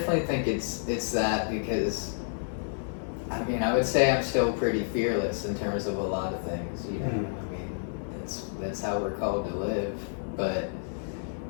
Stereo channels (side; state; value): right; silent; 56 dB below the other